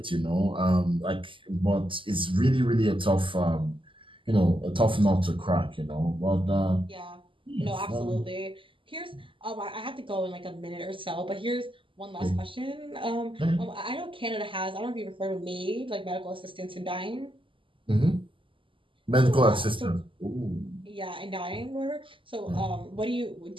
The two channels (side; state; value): left; late; 0.25 ms